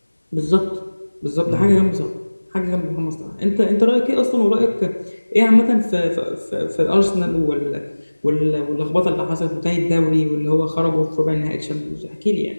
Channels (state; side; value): inverted; both; correlation -1.00